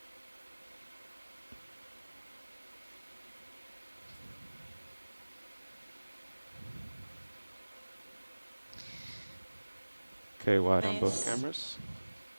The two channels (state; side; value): inverted; both; correlation -1.00